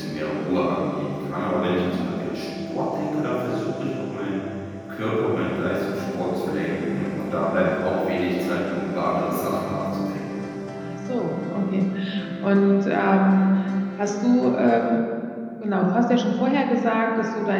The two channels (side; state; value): both; identical; correlation 1.00